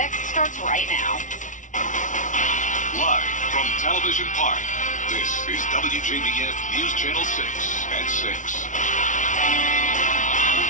starts right now. Live from Television Park, this is WJBF News Channel 6 at 6.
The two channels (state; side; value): late; right; 0.37 ms